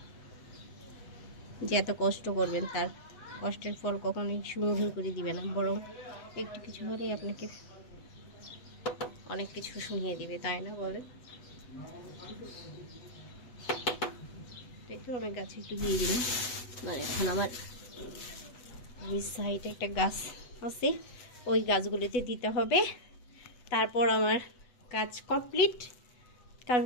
যে এত কষ্ট করবেন তার কষ্টের ফল কখনোই সুমধুর করে দিবে না, বরং একটু কিছু হলেই আপনাকে অনেক কিছু শুনিয়ে দিবে, তাই না বলেন? তাই তো আমি গাছে একটু দিয়ে দিলাম। মানে এখন আমার সাইডে একটা গাছ আছে, ওই গাছগুলোতে দিতে হবে, তারপর আমার কাজ কমপ্লিট। কারণ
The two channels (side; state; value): right; late; 8.1 ms